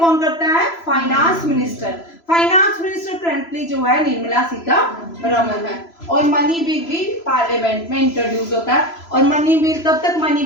करता है? Finance minister. Finance minister currently जो है निर्मला सीतारमण है, और मनी बिल भी पार्लियामेंट में इंट्रोड्यूस होता है, और मनी बिल तब तक मनी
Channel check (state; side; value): late; right; 3.0 ms